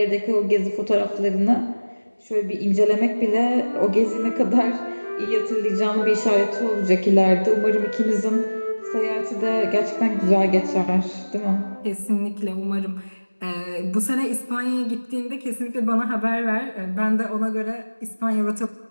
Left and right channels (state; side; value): inverted; both; correlation -1.00